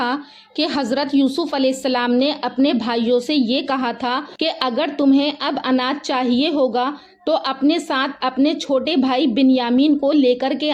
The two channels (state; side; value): identical; both; correlation 1.00